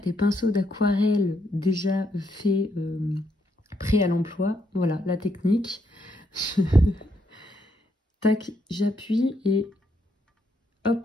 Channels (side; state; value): both; normal; correlation 0.77